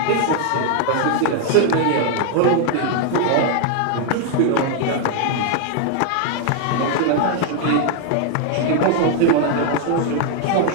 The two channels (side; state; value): both; different; correlation 0.00